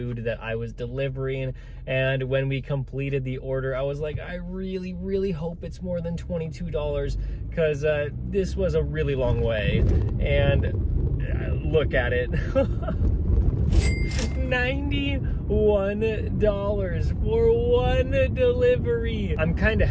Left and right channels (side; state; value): both; identical; correlation 1.00